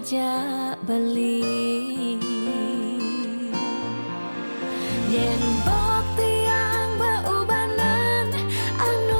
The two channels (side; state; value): both; inverted; correlation -1.00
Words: beli yen bok tiang beubanan